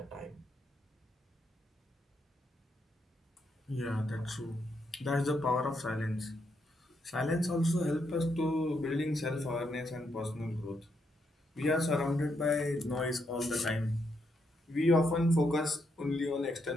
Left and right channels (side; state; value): both; normal; correlation 0.79